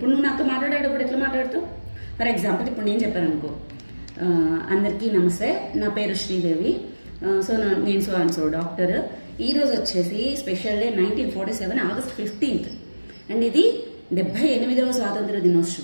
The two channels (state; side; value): inverted; both; correlation -1.00